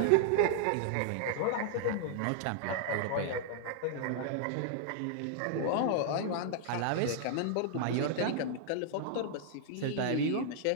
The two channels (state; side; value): different; both; correlation -0.01